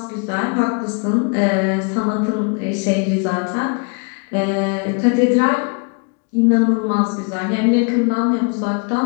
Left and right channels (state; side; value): quieter; right; 36.0 dB